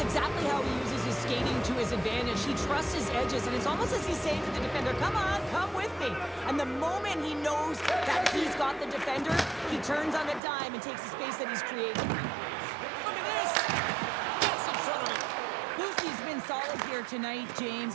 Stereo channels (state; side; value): drops out; left; at 10.4 s